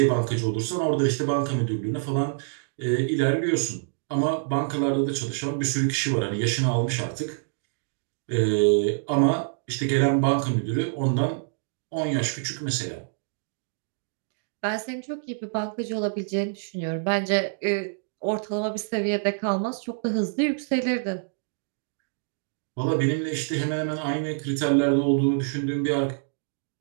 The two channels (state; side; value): silent; left; digital silence